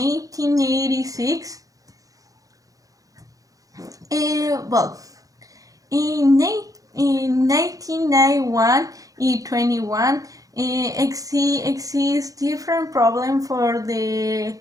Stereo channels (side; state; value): left; late; 0.17 ms